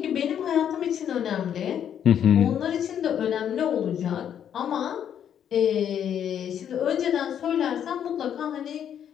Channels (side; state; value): right; quieter; 9.2 dB